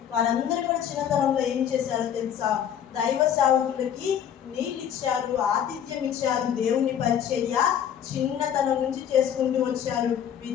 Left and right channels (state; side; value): quieter; right; 9.2 dB